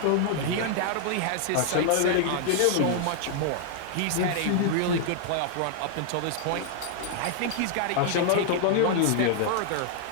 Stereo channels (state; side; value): different; both; correlation 0.00